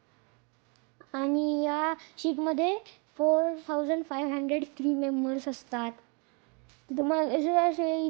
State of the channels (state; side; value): quieter; left; 34.6 dB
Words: आणि या शिपमध्ये 4500 क्रू मेंबर्स असतात. तुम्हाला असे